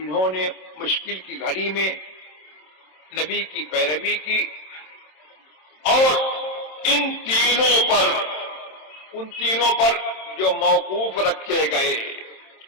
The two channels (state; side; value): late; right; 27 ms